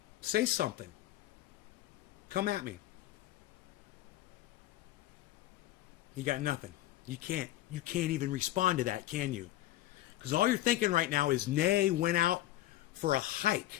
Say something. Come at me. You got nothing. You can't even respond to that, can you? Because all you're thinking right now is Nay went out for a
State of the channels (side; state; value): right; quieter; 15.1 dB